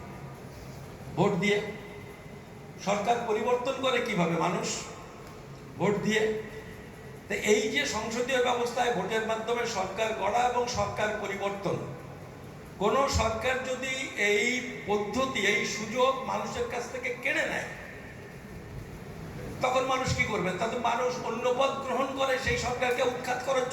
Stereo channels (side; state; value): both; identical; correlation 1.00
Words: ভোট দিয়ে। সরকার পরিবর্তন করে কিভাবে? মানুষ ভোট দিয়ে। তো এই যে সংসদীয় ব্যবস্থায় ভোটের মাধ্যমে সরকার গড়া এবং সরকার পরিবর্তন, কোন সরকার যদি এই পদ্ধতি, এই সুযোগ মানুষের কাছ থেকে কেড়ে নেয়, তখন মানুষ কি করবে? তাতে মানুষ অন্য পথ গ্রহণ করে সেই সরকারকে উৎখাত করার